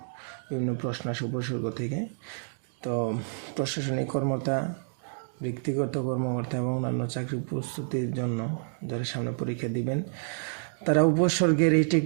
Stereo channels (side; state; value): left; silent; digital silence